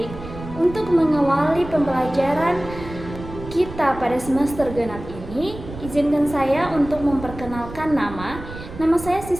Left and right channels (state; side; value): noise; right; rumble, 13 dB below the sound